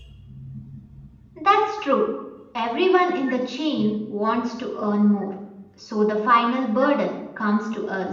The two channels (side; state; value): both; identical; correlation 1.00